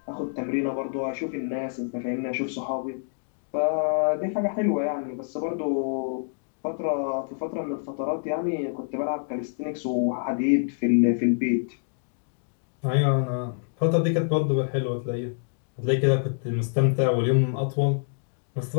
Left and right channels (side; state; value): right; silent; digital silence